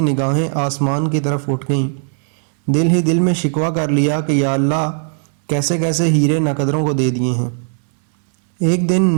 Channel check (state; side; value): silent; left; 62 dB below the other